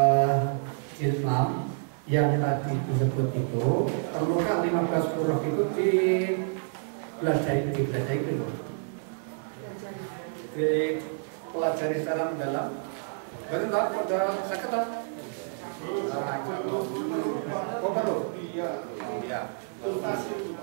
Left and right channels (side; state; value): left; silent; 59 dB below the other